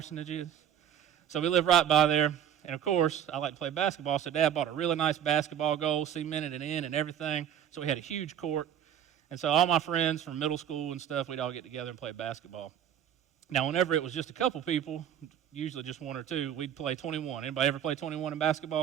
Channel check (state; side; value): quieter; left; 9.6 dB